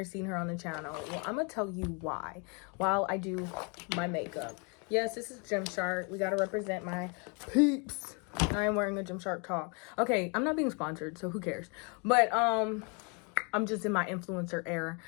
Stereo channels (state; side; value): quieter; right; 34.2 dB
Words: seen her on the channel? Well, I'm gonna tell you why while I do my makeup. Yes, this is Gymshark. We gotta represent my peeps. I am wearing a Gymshark top. Okay, I'm not being sponsored, so who cares? But I'm just in my influencer era.